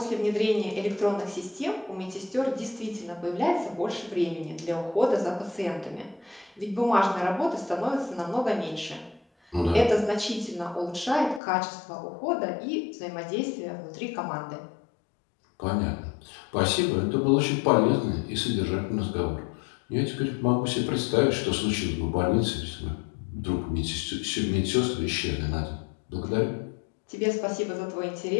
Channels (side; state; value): right; drops out; at 11.4 s